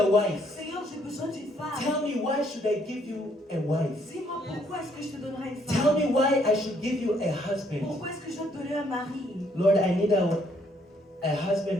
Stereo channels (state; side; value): normal; both; correlation 0.68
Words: wife. Seigneur, j'ai besoin d'une femme. Tell me, why should I give you a wife? Dis-moi pourquoi est-ce que je te donnerai une Tell femme? me why I should give you a husband. Pourquoi est-ce que je dois te donner un mari? Lord, I need a husband